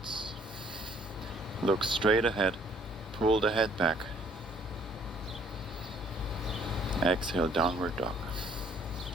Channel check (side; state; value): both; normal; correlation 0.61